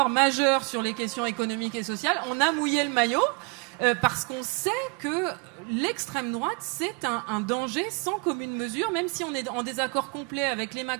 majeurs sur les questions économiques et sociales. On a mouillé le maillot. Parce qu'on sait que l'extrême droite, c'est un danger sans commune mesure, même si on est en désaccord complet avec les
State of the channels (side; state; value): left; quieter; 32.3 dB